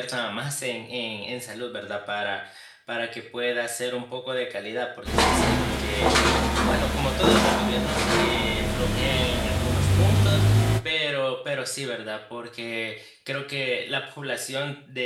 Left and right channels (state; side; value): identical; both; correlation 1.00